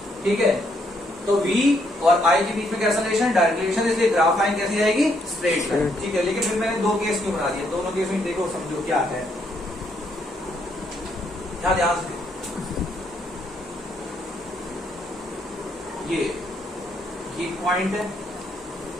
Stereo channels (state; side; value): normal; both; correlation 0.73